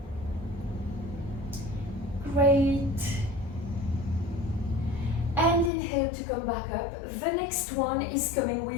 Great. And inhale to come back up. The next one is coming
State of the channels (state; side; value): drops out; right; at 5.7 s